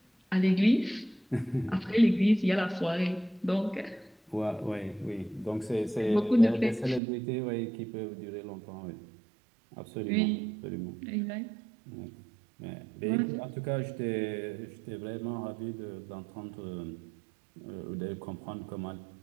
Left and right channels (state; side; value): drops out; left; at 7.0 s